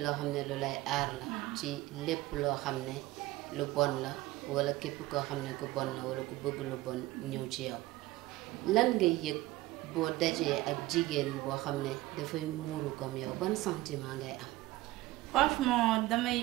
loo xam ne lu lay aar la ci lépp loo xam ne lu bon la wala képp koo xam ne ku bon la wala ku bëgg lu bon ñëw ci yow lan ngay yëg boo dajee ak jigéen boo xam ne dafay muuru comme yow ban sentiment ngay am. franchement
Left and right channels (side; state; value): left; quieter; 18.2 dB